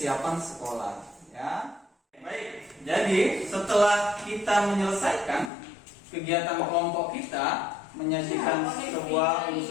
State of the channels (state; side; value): drops out; right; at 5.5 s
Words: sekolah. Ya. Baik, jadi setelah kita menyelesaikan kegiatan kelompok kita, menyajikan sebuah